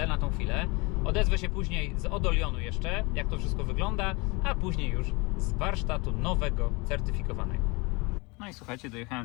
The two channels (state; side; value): quieter; right; 26.8 dB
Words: na tą chwilę. Odezwę się później z Odolionu jeszcze, jak to wszystko wygląda, a później już z warsztatu nowego, certyfikowanego. No i słuchajcie,